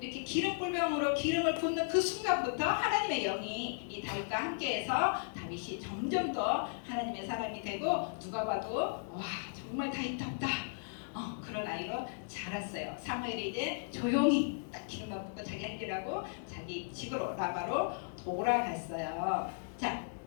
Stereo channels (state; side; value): silent; right; digital silence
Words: 이렇게 기름불병으로 기름을 붓는 그 순간부터 하나님의 영이 이 다윗과 함께해서 다윗이 점점 더 하나님의 사람이 되고 누가 봐도 와 정말 다윗답다 그런 아이로 자랐어요. 사무엘이 이제 조용히 딱 기름만 붓고 자기 할 일하고 자기 집으로 라바로 돌아갔어요. 자,